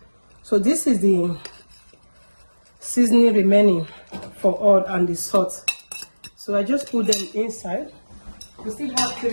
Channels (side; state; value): both; inverted; correlation -1.00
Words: So this is the seasoning remaining for all and the salt. So I just put them inside. We still have